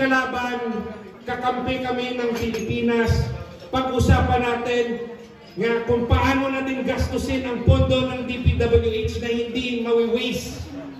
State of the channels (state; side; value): identical; both; correlation 1.00